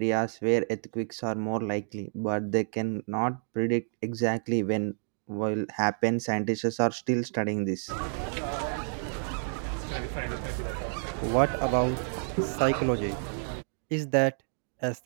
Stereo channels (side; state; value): left; silent; 58 dB below the other